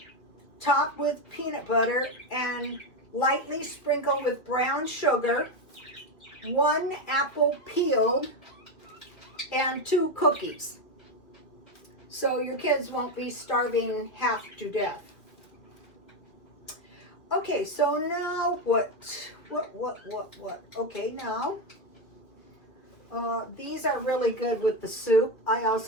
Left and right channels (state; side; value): late; right; 2.4 ms